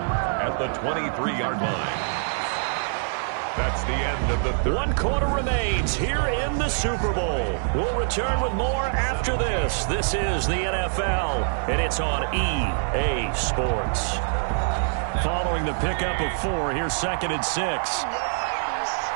the 23-yard line. That's the end of the third. 1 quarter remains here in the Super Bowl. We'll return with more after this. This is the NFL, and it's on EA Sports. Following the pickup of 4, here's 2nd and 6.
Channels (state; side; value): silent; left; 62 dB below the other